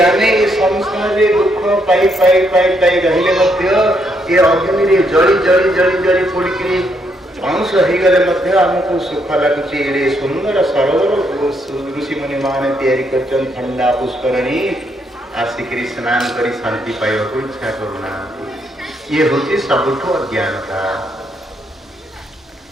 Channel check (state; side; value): normal; both; correlation 0.75